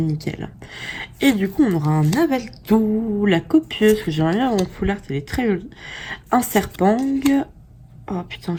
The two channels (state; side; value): identical; both; correlation 1.00